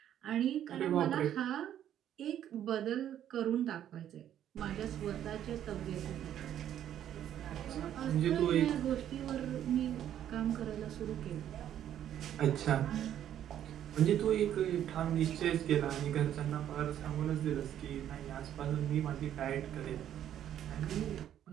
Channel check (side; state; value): left; quieter; 10.7 dB